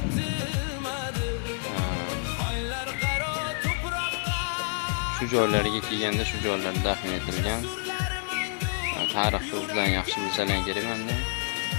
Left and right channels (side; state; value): right; silent; 59 dB below the other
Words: Shu joylarga kelganda shu joylarda dafn etilgan. Tarixni bilan yaxshi bilsalar kerak menda.